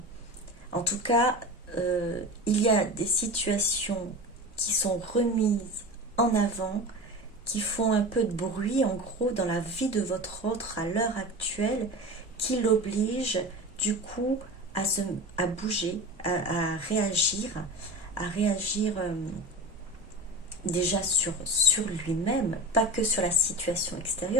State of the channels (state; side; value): normal; both; correlation 0.30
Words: en tout cas, il y a des situations qui sont remises en avant, qui font un peu de bruit, en gros, dans la vie de votre autre à l'heure actuelle, qui l'oblige, du coup, à bouger, à réagir, déjà sur lui-même, pas que sur la situation